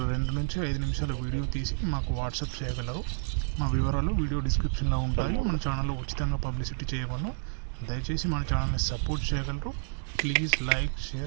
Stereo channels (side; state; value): left; silent; digital silence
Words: 2 నుంచి 5 నిమిషాల వీడియో తీసి మాకు వాట్సాప్ చేయగలరు. మా వివరాలు వీడియో డిస్క్రిప్షన్లో ఉంటాయి. మన ఛానల్లో ఉచితంగా పబ్లిసిటీ చేయబడను. దయచేసి మన ఛానల్ని సపోర్ట్ చేయగలరు. Please like,